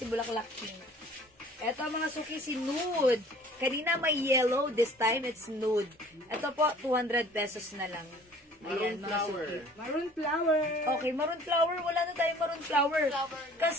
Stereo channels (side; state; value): both; normal; correlation 0.51